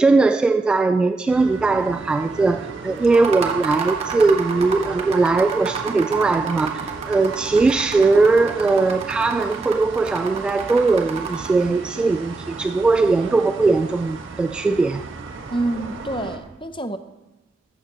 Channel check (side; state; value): left; quieter; 3.3 dB